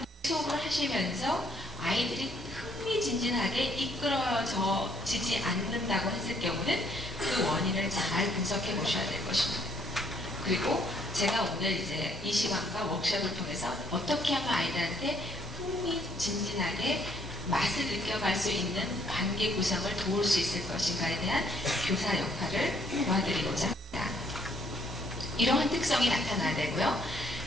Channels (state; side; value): normal; both; correlation 0.67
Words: 수업을 하시면서 아이들이 흥미진진하게 이끌어지지 않는다고 했을 경우는 그 원인을 잘 분석해 보셔야 될 것입니다. 그리고 제가 오늘 이제 이 시간과 워크숍을 통해서 어떻게 하면 아이들한테 흥미진진하게 맛을 느껴갈 수 있는 관계 구성을 도울 수 있을 것인가에 대한 교사 역할을 도와드리고자 합니다. 이러한 특성이 나타나야 되고요.